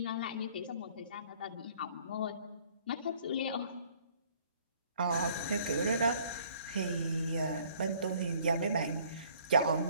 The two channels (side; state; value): both; inverted; correlation -0.58